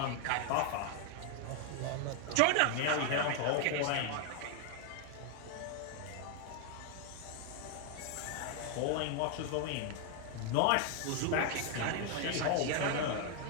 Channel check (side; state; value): both; different; correlation 0.01